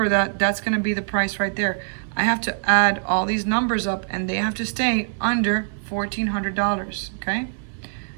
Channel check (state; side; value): silent; left; digital silence